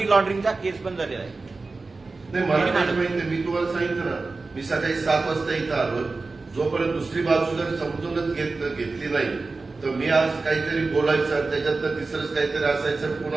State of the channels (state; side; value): quieter; left; 3.8 dB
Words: लॉन्ड्रिंगचा केस पण झालेला आहे. नाही, मला त्याची माहिती नाही. मी तुम्हाला सांगितलं ना, मी सकाळी 7 वाजता इथं आलो. जोपर्यंत दुसरी बाजू जर समजूनच घेतली नाही तर मी आज काहीतरी बोलायचं, त्याच्यात तर तिसरंच काहीतरी असायचं.